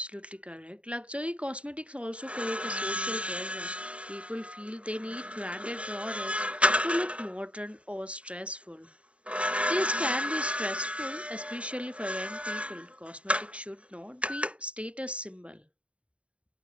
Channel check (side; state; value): left; late; 0.063 ms